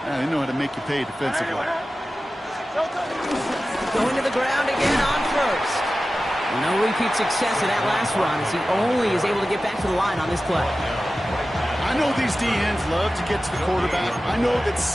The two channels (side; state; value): both; normal; correlation 0.95